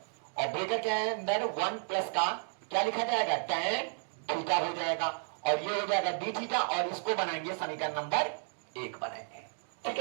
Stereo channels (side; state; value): left; silent; 56 dB below the other